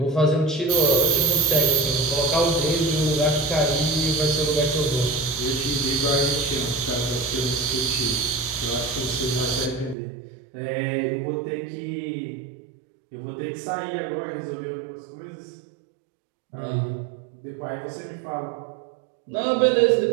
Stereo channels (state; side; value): drops out; left; at 10.0 s